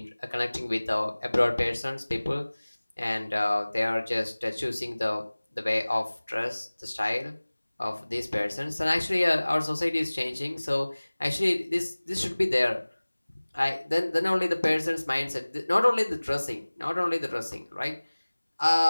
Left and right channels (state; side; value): inverted; both; correlation -1.00